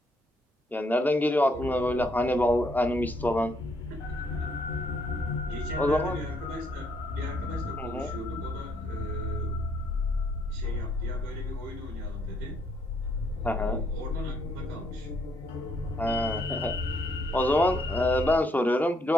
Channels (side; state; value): both; normal; correlation 0.71